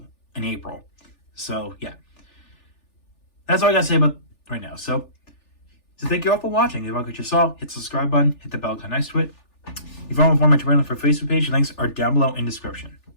in April. So, yeah. That's all I got to say about right now. So thank you all for watching. If you like what you saw, hit the subscribe button, hit the bell icon next to it. If you want to follow my Twitter for Facebook page, links are down below in the description.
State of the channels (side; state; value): right; late; 3.4 ms